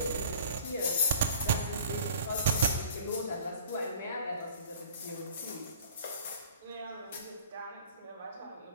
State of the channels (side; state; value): both; inverted; correlation -0.45